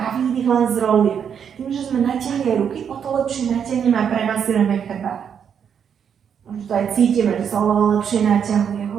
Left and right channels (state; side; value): quieter; left; 7.7 dB